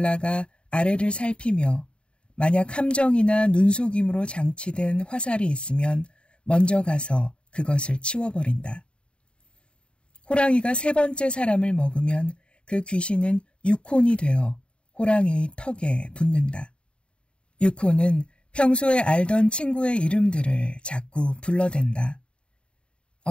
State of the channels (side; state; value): right; late; 0.055 ms